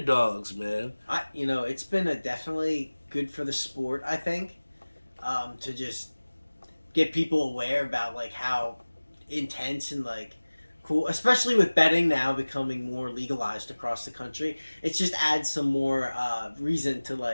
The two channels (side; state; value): both; inverted; correlation -1.00